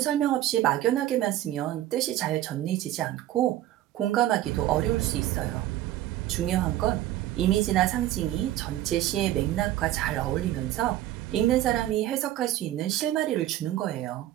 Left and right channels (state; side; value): quieter; left; 13.8 dB